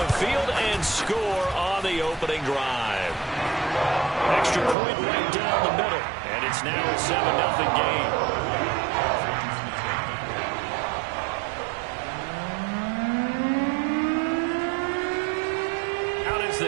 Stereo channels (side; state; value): left; drops out; at 4.8 s